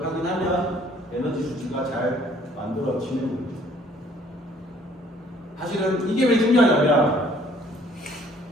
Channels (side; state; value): both; normal; correlation 0.59